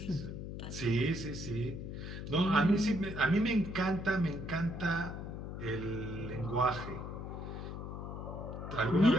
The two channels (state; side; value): noise; left; hum, 7 dB below the sound